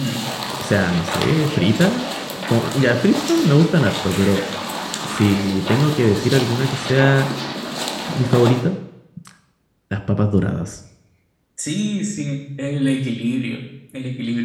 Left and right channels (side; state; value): both; identical; correlation 1.00